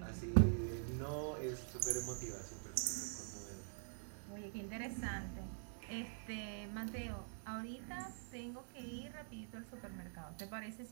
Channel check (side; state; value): left; silent; digital silence